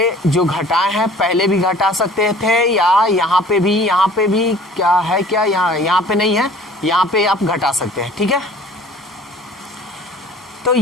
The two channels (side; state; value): both; normal; correlation 0.49